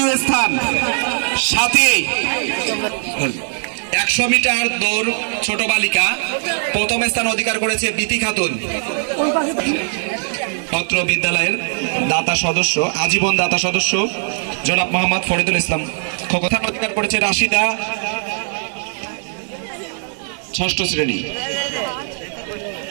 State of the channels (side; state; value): left; silent; digital silence